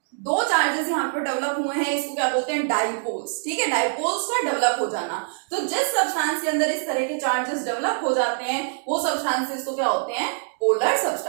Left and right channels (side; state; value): left; silent; digital silence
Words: दो चार्जेस यहाँ पे डेवलप हुए हैं, इसको क्या बोलते हैं, डाइपोल्स। ठीक है, डाइपोल्स का डेवलप हो जाना। तो जिस सब्सटेंस के अंदर इस तरह के चार्जेस डेवलप हो जाते हैं वो सब्सटेंसेस को क्या होते हैं, पोलर